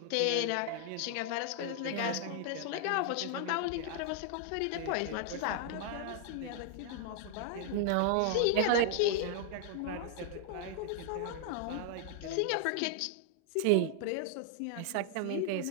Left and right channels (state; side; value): different; both; correlation 0.00